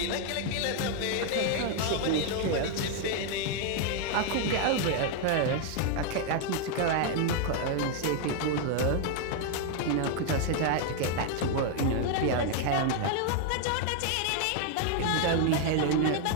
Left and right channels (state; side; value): different; both; correlation 0.00